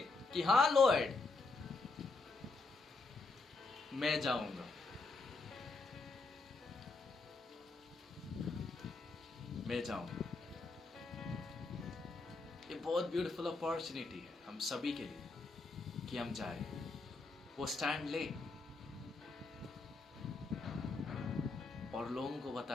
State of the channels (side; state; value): right; quieter; 3.7 dB